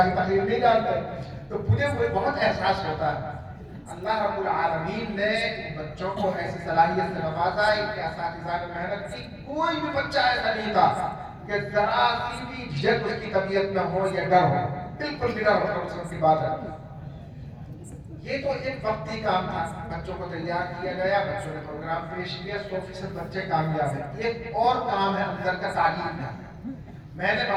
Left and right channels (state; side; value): identical; both; correlation 1.00